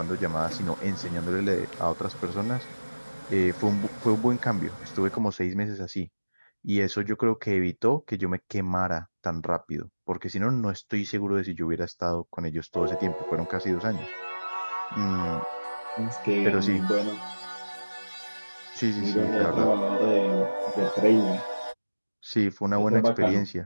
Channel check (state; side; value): inverted; both; correlation -1.00